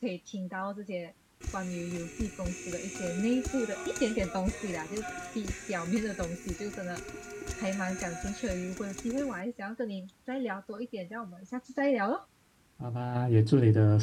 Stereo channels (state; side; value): identical; both; correlation 1.00